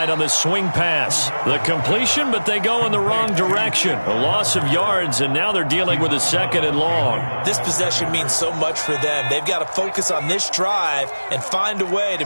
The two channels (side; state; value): both; inverted; correlation -1.00